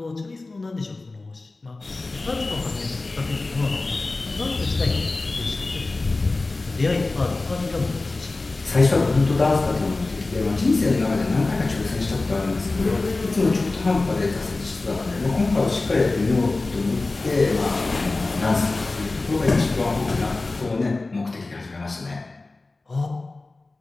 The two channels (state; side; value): quieter; right; 3.3 dB